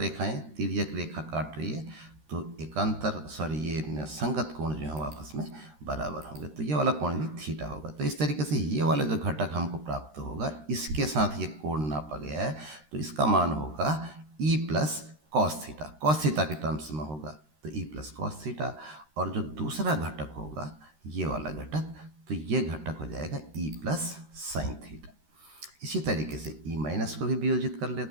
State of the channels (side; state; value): left; late; 13 ms